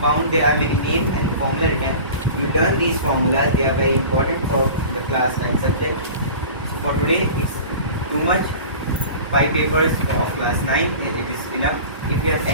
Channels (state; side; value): inverted; both; correlation -0.38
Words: There are many names and formula written. You learn these formulas. They are very important for the class 9 subject. So for today, it's too much. 5 papers of class 9. It is enough. If you have